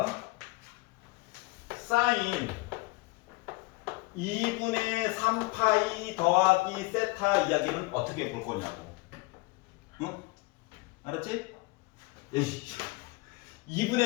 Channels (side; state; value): right; quieter; 23.6 dB